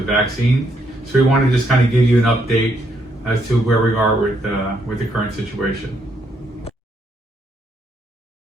vaccine. So we want to just kind of give you an update as to where we are with the current situation.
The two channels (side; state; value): both; normal; correlation 0.74